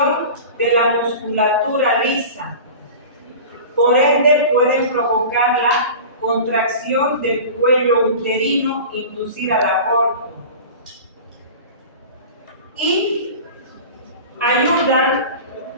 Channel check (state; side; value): inverted; both; correlation -0.36